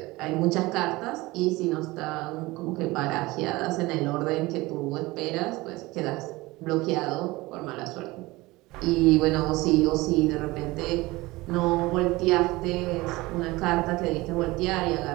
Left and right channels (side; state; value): left; quieter; 20.9 dB